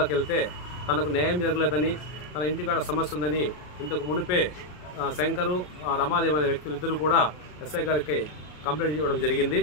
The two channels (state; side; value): late; right; 33 ms